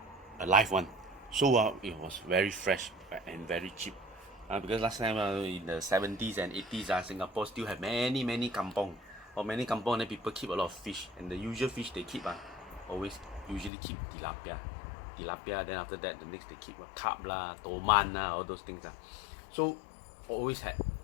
a live one. So it was very fresh and very cheap. Because last time in the 70s and 80s Singapore still have many kampong. Or many kampong, then people keep a lot of fish. And the usual fish they keep always usually keep tilapia. Then after that the next they keep carp lah, toman all those things So always had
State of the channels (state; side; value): drops out; right; at 13.7 s